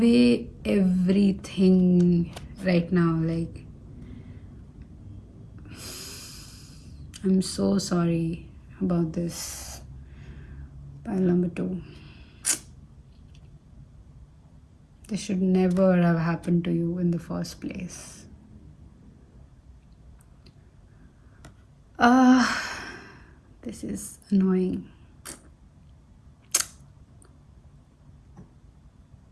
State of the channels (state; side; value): identical; both; correlation 1.00